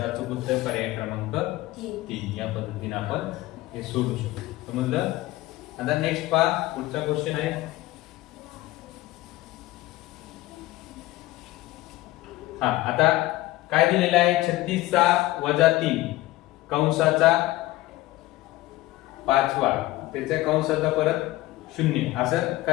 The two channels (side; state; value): right; quieter; 17.5 dB